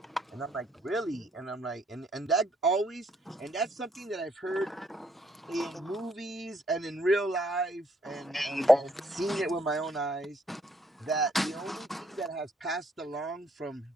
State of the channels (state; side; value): normal; both; correlation 0.69